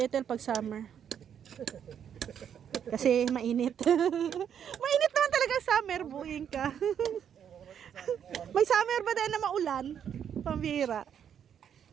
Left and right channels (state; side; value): quieter; left; 8.6 dB